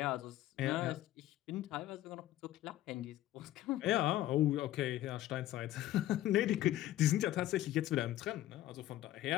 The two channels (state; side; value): quieter; right; 14.3 dB